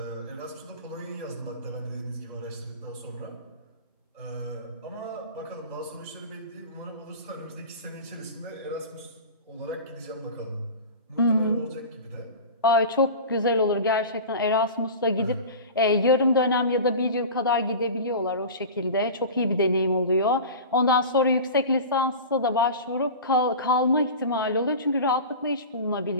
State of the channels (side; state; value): both; inverted; correlation -0.33